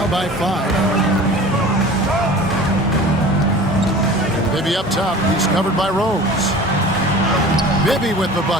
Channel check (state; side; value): normal; both; correlation 0.41